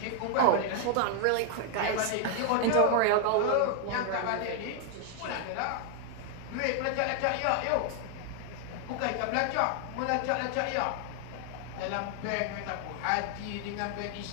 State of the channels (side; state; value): both; different; correlation 0.00